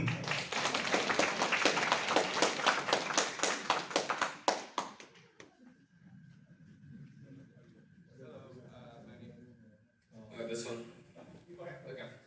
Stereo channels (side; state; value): both; identical; correlation 1.00